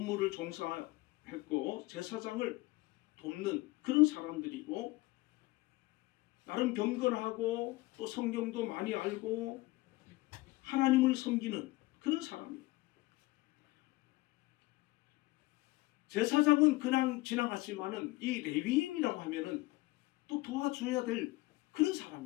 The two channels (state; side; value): quieter; right; 20.8 dB